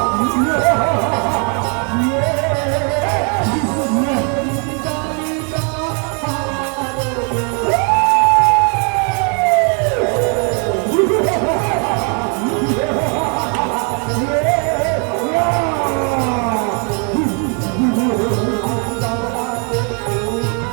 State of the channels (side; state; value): left; quieter; 38.4 dB